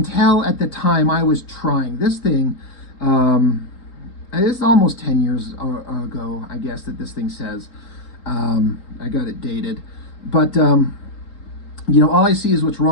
tell at the time I was trying. This thing, it's almost 10 years ago, I guess, that this thing says. I got it dated. But all I see is what's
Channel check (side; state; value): right; late; 3.8 ms